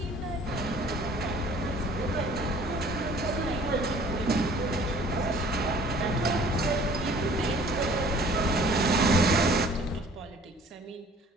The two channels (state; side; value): normal; both; correlation 0.52